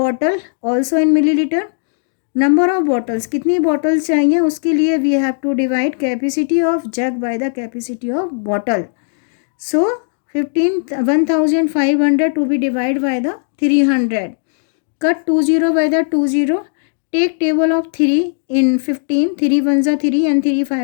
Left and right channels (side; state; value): right; silent; digital silence